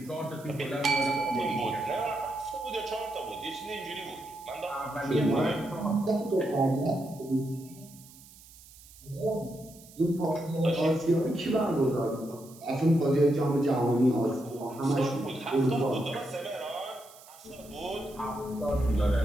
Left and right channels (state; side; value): noise; right; hiss, 22 dB below the sound